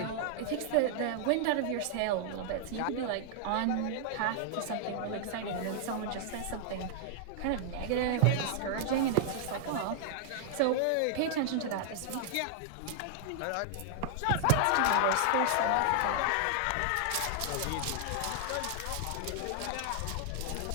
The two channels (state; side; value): different; both; correlation -0.01